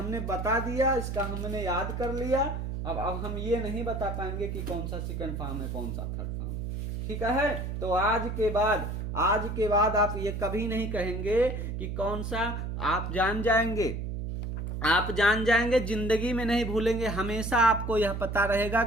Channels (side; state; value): right; noise; hum, 4 dB below the sound